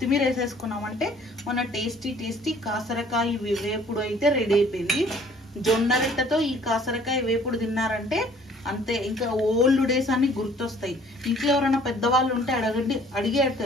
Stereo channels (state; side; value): normal; both; correlation 0.56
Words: వేసేసుకున్నామంటే మన టేస్టీ కాసరకాయ వేపుడు అయితే రెడీ అయిపోయింది. జొన్న రొట్టెతో ఈ కాసరకాయ వేపుడు తిన్నారంటే అంతే, ఇంకా ఓల్డ్ డేస్ అన్ని గుర్తొస్తాయి. ఇంట్లో ఎవరైనా పెద్దవాళ్ళు ఉంటే అడిగి